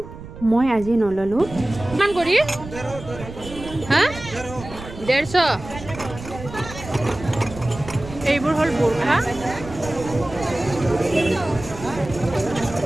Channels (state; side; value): noise; right; rumble, 13 dB below the sound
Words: মই আজি নল'লোঁ। কিমান কৰি? হা? 150। এইবোৰ হ'ল বোৰখা।